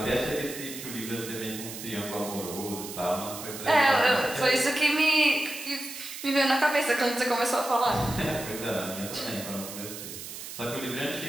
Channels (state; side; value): noise; right; hiss, 10 dB below the sound